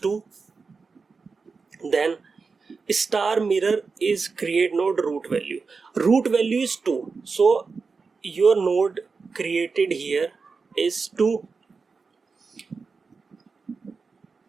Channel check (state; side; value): quieter; left; 4.7 dB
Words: Then star mirror is create node root value. Root value is 2, so your node created here is 2.